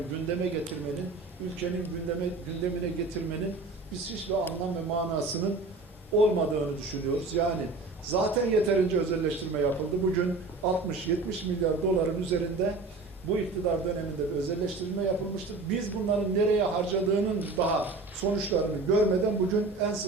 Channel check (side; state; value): left; quieter; 3.6 dB